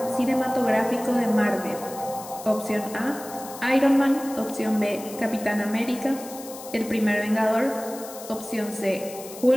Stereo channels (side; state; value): left; noise; hiss, 15 dB below the sound